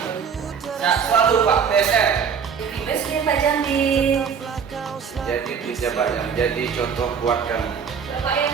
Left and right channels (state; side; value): quieter; left; 6.8 dB